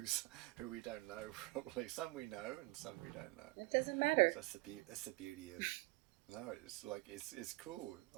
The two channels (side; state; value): left; quieter; 23.0 dB